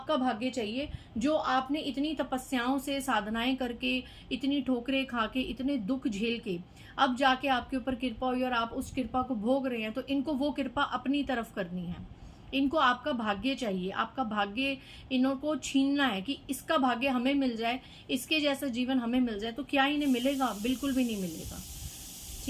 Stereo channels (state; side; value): identical; both; correlation 1.00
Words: भाग्य चाहिए, जो आपने इतनी तपस्याओं से, साधनाएं करके, इतनी ठोकरें खा के, इतने दुख झेल के अब जाके आपके ऊपर कृपा हुई और आप उस कृपा को भोग रहे हैं। तो इनको वो कृपा अपनी तरफ करनी है, इनको आपका भाग्य चाहिए, आपका भाग्य इनको छीनना है कि इसका भाग्य हमें मिल जाए, इसके जैसा जीवन हमें मिल जाए। तो क्या इन्हें मिलेगा, बिल्कुल भी नहीं मिलेगा,